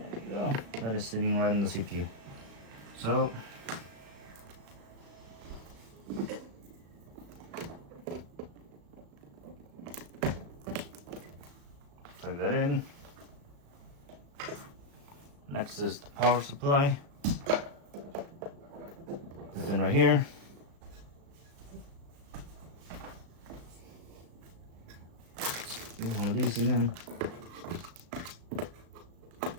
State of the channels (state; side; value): late; left; 36 ms